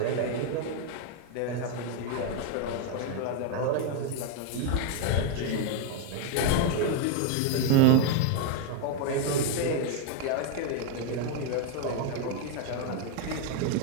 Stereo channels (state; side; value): different; both; correlation 0.00